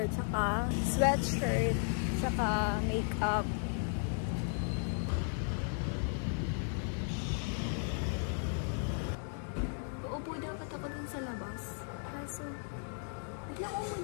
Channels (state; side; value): silent; right; 54 dB below the other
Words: tsaka sweatshirt, tsaka makeup. Uupo dapat ako dun sa labas. Kaso, biglang